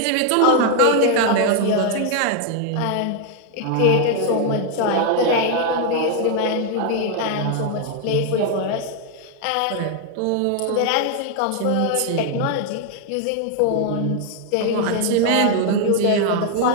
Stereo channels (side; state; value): both; different; correlation 0.00